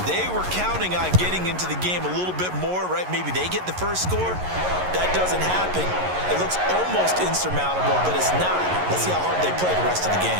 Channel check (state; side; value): late; left; 11 ms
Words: they were counting on getting into the game a little bit more, right? Maybe they get the first score. That doesn't happen. It looks almost insurmountable, but it's not. Let's see how hard they play the rest of the